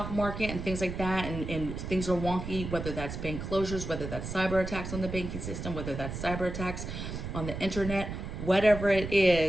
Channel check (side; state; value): right; noise; rumble, 6 dB below the sound